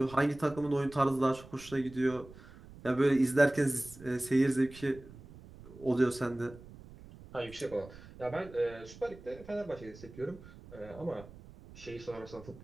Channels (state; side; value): noise; right; rumble, 18 dB below the sound